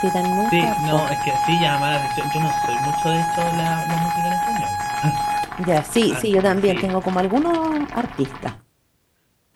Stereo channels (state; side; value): identical; both; correlation 1.00